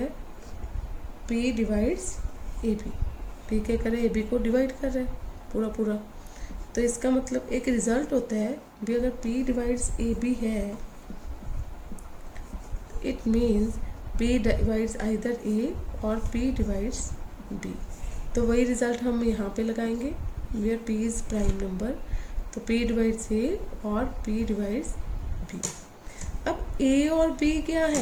पी डिवाइड्स ए बी, पी क्या कर रहा है, ए बी को डिवाइड कर रहा है पूरा पूरा। तो इसका मतलब एक रिजल्ट होता है भी, अगर पी डिवाइड्स ए बी है, it means P divides either A और पी डिवाइड्स बी। तो वही रिजल्ट हम यहाँ पे लगाएंगे, where p is prime number, तो पी डिवाइड्स ए और पी डिवाइड्स बी। अब ए और बी क्या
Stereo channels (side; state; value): both; identical; correlation 1.00